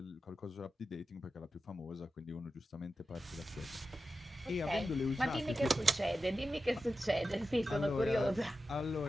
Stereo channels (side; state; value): both; normal; correlation 0.92